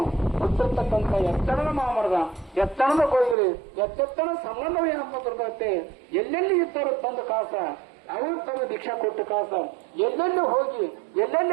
ಗೊತ್ತಿರ್ತಕ್ಕಂಥ ಎತ್ತಣದ ಮಾಮರದ ಎತ್ತಣದ ಕೊಯ್ಗಲಿ ಎತ್ತೆತ್ತಣ ಸಂಬಂಧವೇನಪ್ಪ ಬರ್ತೈತೆ. ಎಲ್ಲೆಲ್ಲಿ ಇದ್ದರು ತಂದ ಕಾಸ ಅವರು ತಮ್ಮ ದೀಕ್ಷಾ ಕೊಟ್ಟು ಕಾಸ ಎಲ್ಲೆಲ್ಲಿ ಹೋಗಿ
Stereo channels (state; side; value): drops out; left; at 3.4 s